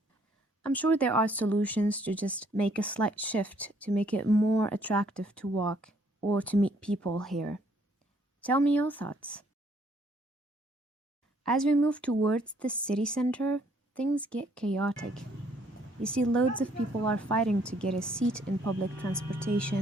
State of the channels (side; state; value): both; normal; correlation 0.65